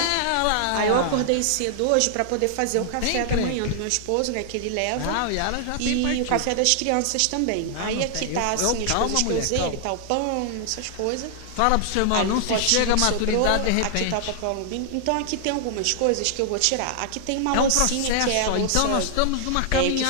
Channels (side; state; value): both; different; correlation 0.00